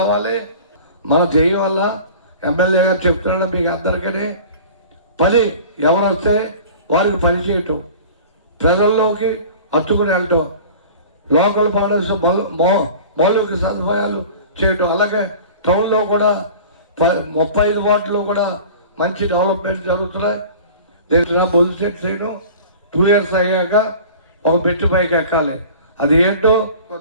మన జయం వల్ల ఎమ్మెల్యే గారు చెప్తున్నాడు మీకు అందరికీ పని ఎవరు వస్తే వారికి పని చేయటం, ప్రజల్లోకి హత్తుకుని వెళ్ళటం, లోకల్ బాడీస్ మౌలిక సదుపాయాలు చేయటం. అలాగే టౌన్లో కూడా 35 వార్డులో కూడా మంచి డెవలప్మెంట్ జరుగుతున్నాయి. నేను బొలిశెట్టి శ్రీను 2 years అయ్యాక ఒక మెట్టు పైకి ఎక్కాలి. అది ఏంటో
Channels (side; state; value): both; inverted; correlation -0.41